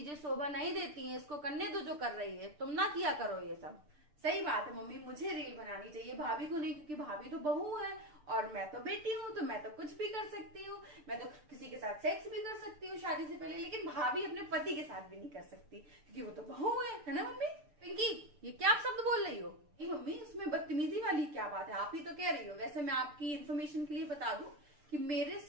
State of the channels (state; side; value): late; left; 6.8 ms